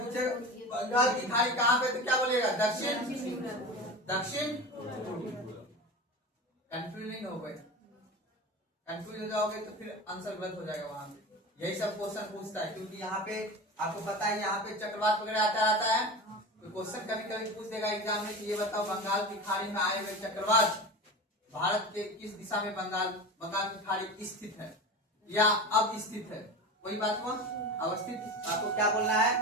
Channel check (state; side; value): normal; both; correlation 0.28